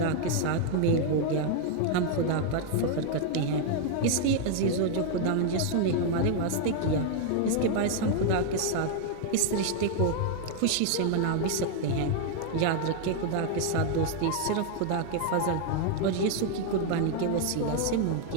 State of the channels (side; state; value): both; different; correlation 0.00